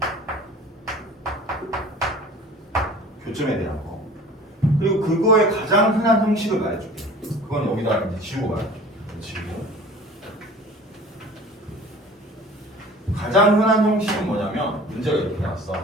교점에 대한 거. 그리고 그거의 가장 흔한 형식을 말해줄게. 그건 여기다 이제 지우고 말할게. 지우고. 가장 흔한 형식은 뭐냐면 문제가 이렇게 나왔어.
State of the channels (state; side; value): normal; both; correlation 0.44